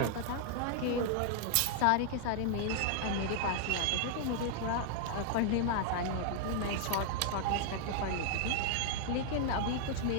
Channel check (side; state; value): both; different; correlation 0.00